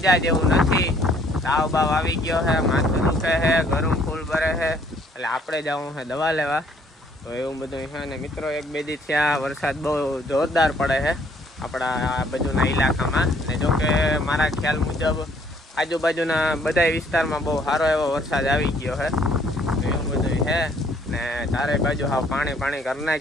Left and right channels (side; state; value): both; normal; correlation 0.63